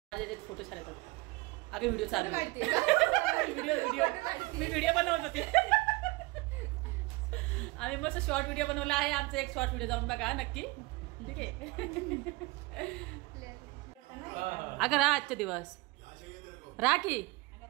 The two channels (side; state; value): left; quieter; 23.6 dB